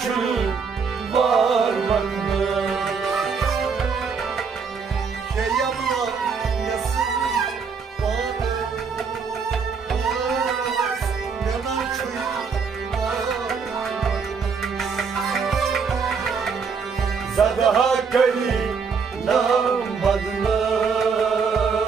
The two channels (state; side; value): quieter; left; 5.6 dB